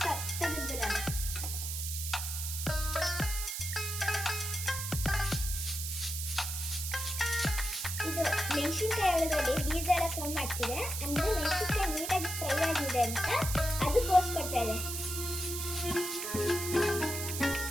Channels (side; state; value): right; noise; hiss, 4 dB below the sound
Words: ಮೆಣಸಿನ್ಕಾಯಿ ಒಳಗಡೆ ಬೀಜ ಎಲ್ಲ ಸೌಂಡ್ ಮಾಡ್ತಿದೆ, ಅಂದ್ರೆ ಮೆಣಸಿನ್ಕಾಯಿ ನೀಟಾಗಿ ಫ್ರೈ ಆಗಿದೆ ಅಂತ ಅದು ತೋರಿಸ್ಕೊಡ್ತಾ ಇದೆ.